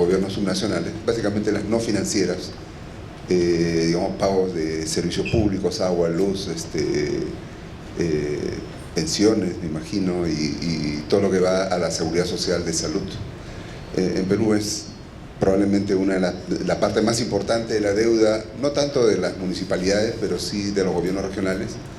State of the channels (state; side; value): identical; both; correlation 1.00